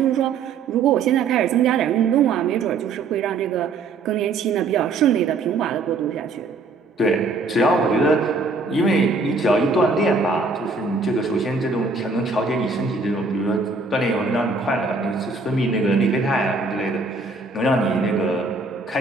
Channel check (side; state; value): left; quieter; 4.0 dB